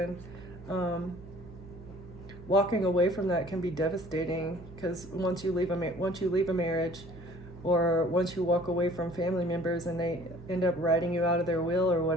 walking away from that can be devastating, because once you leave a marriage, or once you walk away from family members and they end up writing you out of their will or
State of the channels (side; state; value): right; noise; hum, 16 dB below the sound